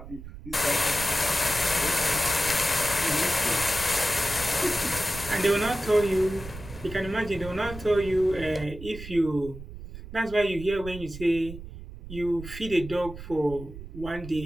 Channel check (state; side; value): noise; right; rumble, 13 dB below the sound